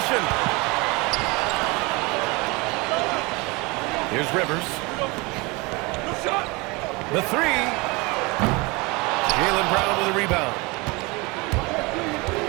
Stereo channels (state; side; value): quieter; left; 25.9 dB